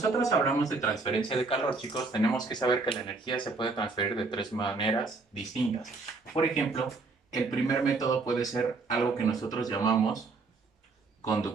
hablamos de transferencia de calor, chicos, tenemos que saber que la energía se puede transferir de tres maneras distintas. Por ejemplo, el primer método puede ser algo que nosotros llamamos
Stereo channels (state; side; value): quieter; left; 3.9 dB